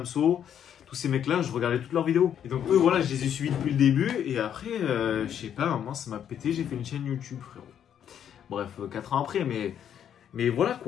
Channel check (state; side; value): quieter; right; 9.3 dB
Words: tous ces mecs-là, je regardais toutes leurs vidéos. Et donc, eux, voilà, je les ai suivis depuis le début. Et après, je sais pas, à un moment, ça m'a pété. J'ai fait une chaîne YouTube, frérot. Bref, 4 ans après, mais voilà,